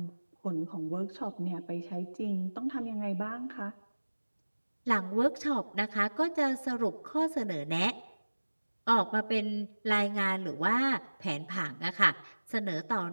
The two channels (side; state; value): both; inverted; correlation -1.00